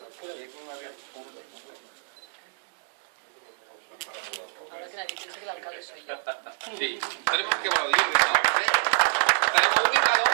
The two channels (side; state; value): left; silent; digital silence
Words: Ahora que nadie piensa que el alcalde soy yo. Sí, tenemos que aplaudir. Tenemos ubicado